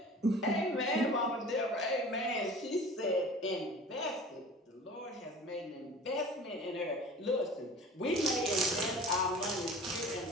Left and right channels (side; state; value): both; normal; correlation 0.42